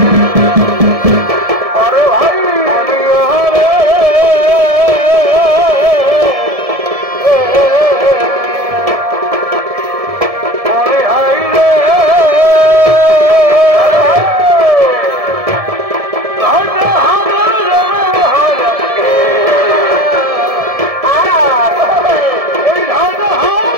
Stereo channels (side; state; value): left; late; 1.7 ms